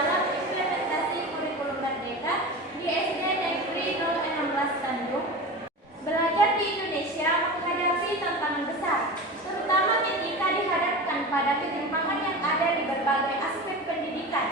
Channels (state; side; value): normal; both; correlation 0.29